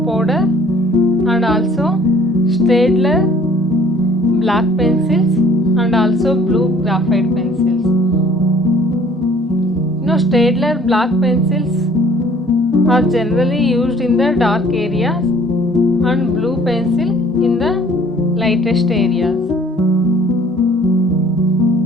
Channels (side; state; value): both; normal; correlation 0.55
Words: powder and also Staedtler black pencils and also blue graphite pencils. Staedtler black pencils are generally used in the dark areas and blue pencil in the lightest areas.